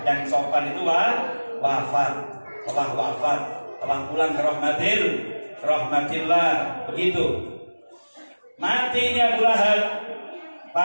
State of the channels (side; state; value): both; inverted; correlation -1.00